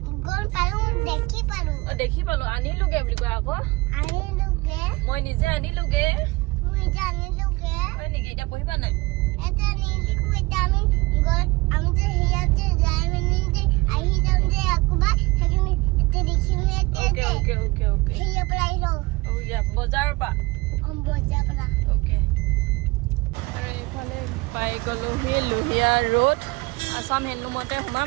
গম পালো দেখি পালো আনিলোগে বুলি কোৱা আকৌ মই নিজে আনিলোগে হয় নেকি এতিয়া পঢ়িবা নাই এটা নিলিখো এটা আমি যে হিয়াতে যাই মানে যে আহি যাম যে আকবা সেইখিনি এটা দেখিম ওকে হিয়া প্লাই লো ও ইয়া বজাৰৰ পা বজাৰ পৰা ওকে আৰু এইফালে পাই গলো হি লোহিয়া ৰোড আসাম হেণ্ডলুমতে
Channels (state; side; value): quieter; left; 23.0 dB